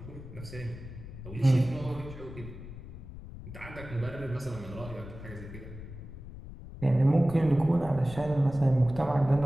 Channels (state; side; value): noise; left; rumble, 13 dB below the sound